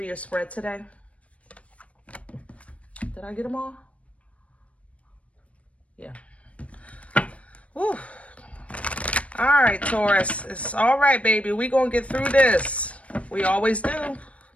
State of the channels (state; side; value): late; right; 0.064 ms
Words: your spread today. Did I get them all? Yeah. Woo. All right, Taurus. It's all right, baby. We're going to get through this. We always do.